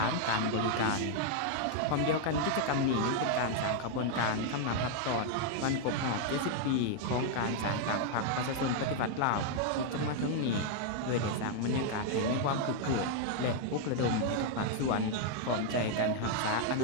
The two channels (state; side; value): different; both; correlation 0.00